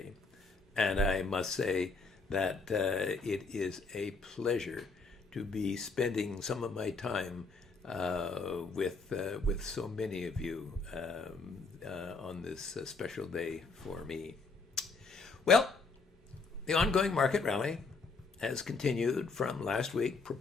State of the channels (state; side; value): quieter; right; 4.1 dB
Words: and I must say that it is a pleasure to be spending some of my time with so many of you on this special day for me. Well, the ongoing market rally has continued from last week,